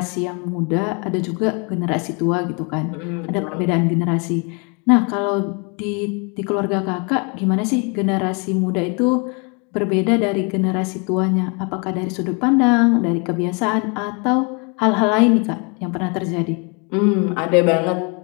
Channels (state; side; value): quieter; right; 33.1 dB